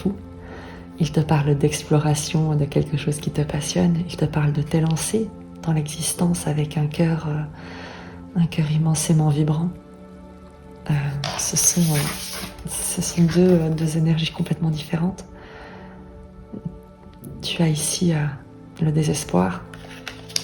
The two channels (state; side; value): identical; both; correlation 1.00